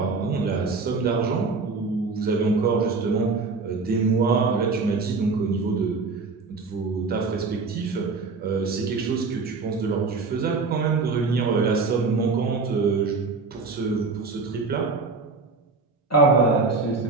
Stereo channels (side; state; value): left; quieter; 4.2 dB